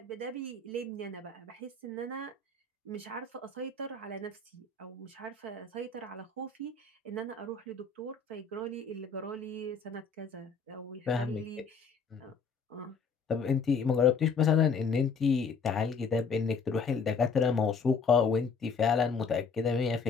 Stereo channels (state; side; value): quieter; right; 4.9 dB